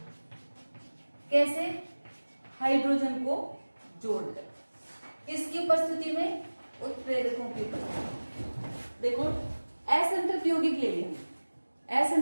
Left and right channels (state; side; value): inverted; both; correlation -1.00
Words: कैसे, हाइड्रोजन को जोड़कर, किसकी उपस्थिति में, उत्प्रेरकों की उपस्थिति। देखो असंतृप्त यौगिक ले लिया,